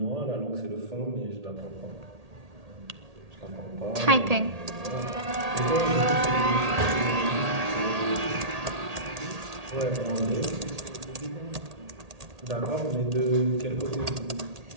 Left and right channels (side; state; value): left; late; 1.8 ms